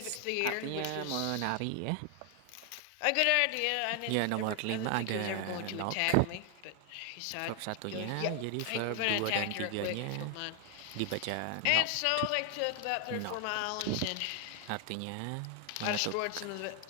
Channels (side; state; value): both; different; correlation 0.00